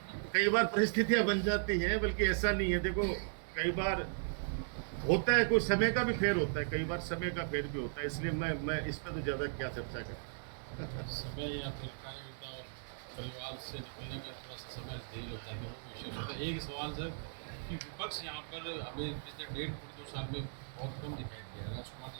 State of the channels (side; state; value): left; silent; digital silence